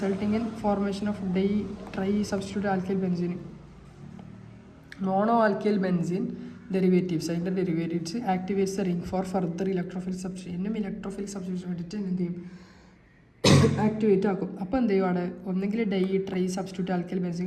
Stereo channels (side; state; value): both; identical; correlation 1.00